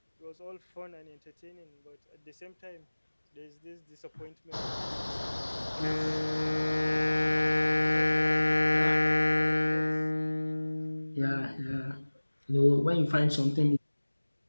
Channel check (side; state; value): both; inverted; correlation -1.00